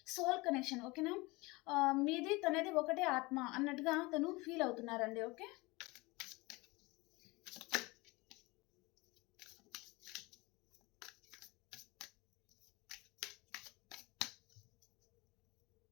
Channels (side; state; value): right; quieter; 23.8 dB